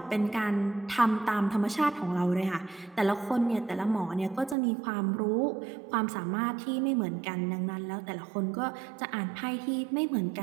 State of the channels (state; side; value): drops out; left; at 4.5 s